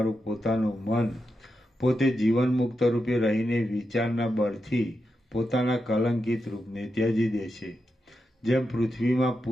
પોતાનું મન પોતે જીવન મુક્ત રૂપે રહીને વિચારના બળથી પોતાના કલંકિત રૂપને ત્યજી દે છે. જેમ પૃથ્વીમાં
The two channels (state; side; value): normal; both; correlation 0.87